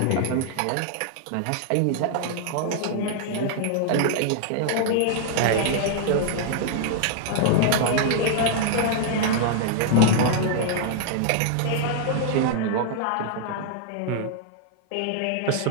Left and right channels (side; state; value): both; different; correlation -0.01